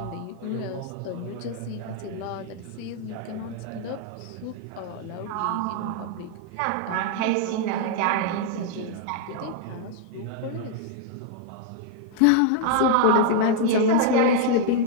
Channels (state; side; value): different; both; correlation -0.01